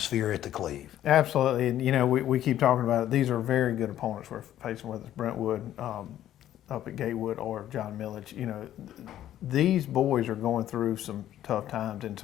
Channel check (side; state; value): right; quieter; 12.1 dB